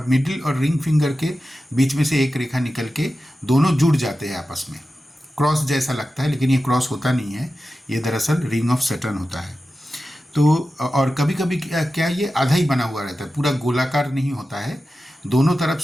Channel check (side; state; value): both; normal; correlation 0.93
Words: मिडिल और रिंग फिंगर के बीच में से एक रेखा निकल के दोनों जुड़ जाते हैं आपस में। क्रॉस जैसा लगता है, लेकिन ये क्रॉस होता नहीं है, ये दरअसल रिंग ऑफ सैटर्न होता है। तो और कभी कभी क्या ये आधा ही बना हुआ रहता है, पूरा गोलाकार नहीं होता है, दोनों तरफ